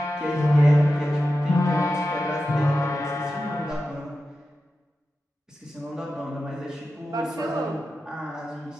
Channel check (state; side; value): normal; both; correlation 0.92